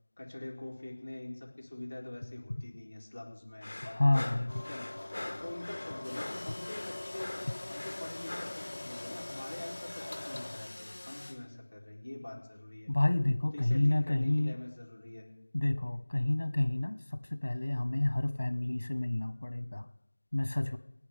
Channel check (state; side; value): inverted; both; correlation -1.00